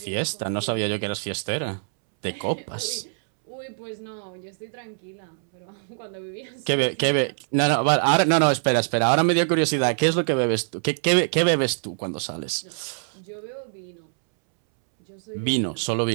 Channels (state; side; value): silent; left; 62 dB below the other